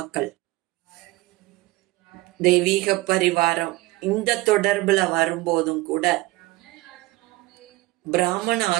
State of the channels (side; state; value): left; quieter; 19.9 dB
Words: தெய்வீக பரிவாரம் இந்த தொடர்புல வரும்போதும் கூட பிராமண